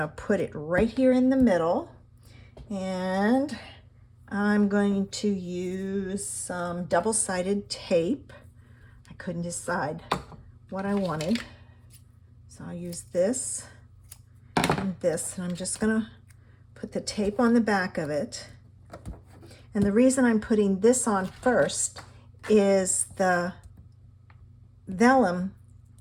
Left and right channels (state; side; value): identical; both; correlation 1.00